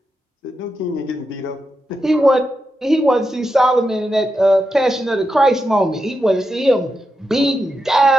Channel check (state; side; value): normal; both; correlation 0.87